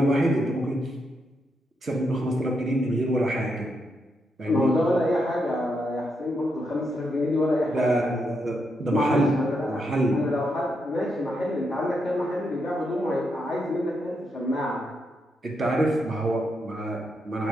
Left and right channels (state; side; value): normal; both; correlation 0.81